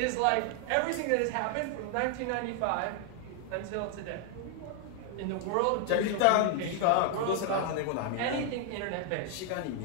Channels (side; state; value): both; different; correlation 0.00